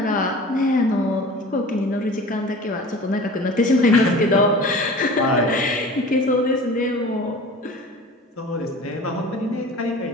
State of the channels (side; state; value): both; normal; correlation 0.39